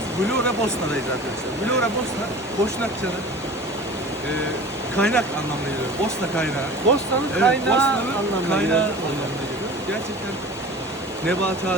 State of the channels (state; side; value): normal; both; correlation 0.39